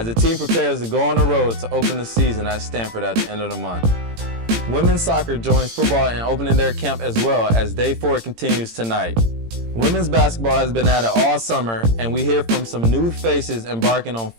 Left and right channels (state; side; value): late; left; 18 ms